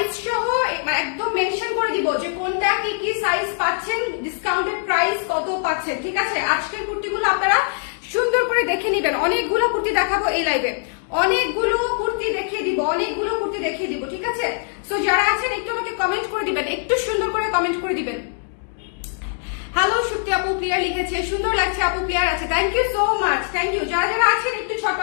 সহ একদম মেনশন করে দিব যে কোনটা কি কি সাইজ পাচ্ছেন, ডিসকাউন্টেড প্রাইস কত পাচ্ছেন, ঠিক আছে? আজকের কুর্তিগুলো আপনারা সুন্দর করে দেখে নেবেন। অনেকগুলো কুর্তি দেখাবো এই লাইভে, অনেকগুলো কুর্তি দেখিয়ে দিব, ঠিক আছে? সো যারা আছেন একটু আমাকে কমেন্ট করে দিবেন, একটু সুন্দর করে কমেন্ট করে দিবেন। হ্যালো সুপ্তি আপু ক্লিয়ার লিখেছে, সুন্দর লাগছে আপু, ক্লিয়ার আছে, thank you so much, thank you. যারা যারা আছেন একটু ছোট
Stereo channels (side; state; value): right; silent; digital silence